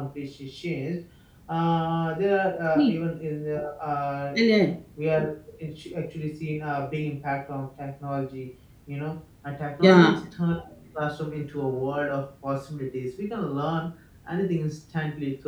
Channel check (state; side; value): identical; both; correlation 1.00